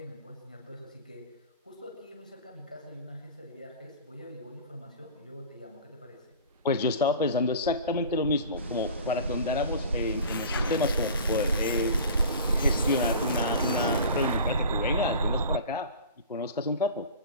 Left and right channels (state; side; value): inverted; both; correlation -0.38